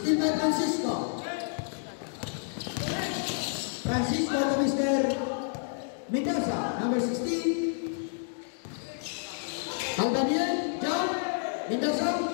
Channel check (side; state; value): right; silent; digital silence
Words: by Francisco. Francisco to Mr. Mendoza, number 16. Albanian, jump. Mendoza.